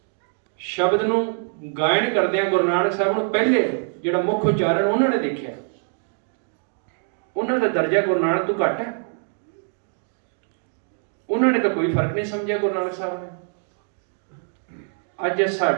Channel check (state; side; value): silent; left; 59 dB below the other